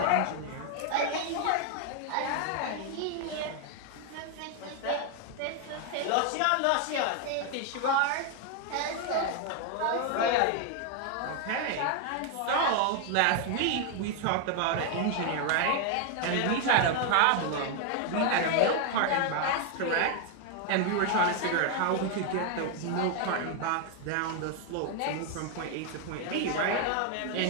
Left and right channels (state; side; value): different; both; correlation 0.01